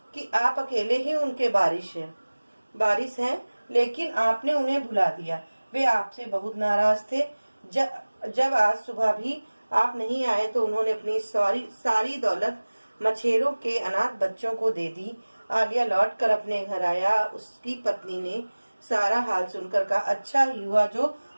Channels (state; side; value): inverted; both; correlation -1.00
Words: कि आप अकेले ही उनके बारिश हैं, लेकिन आपने उन्हें भुला दिया। वे आपसे बहुत नाराज थे। जब आज सुबह भी आप नहीं आए तो उन्होंने अपनी सारी दौलत मछेरों के अनाथ बच्चों को दे दी। आलिया लौट कर अपने घर आया। उसकी पत्नी ने सारा हाल सुनकर कहा, अच्छा ही हुआ जो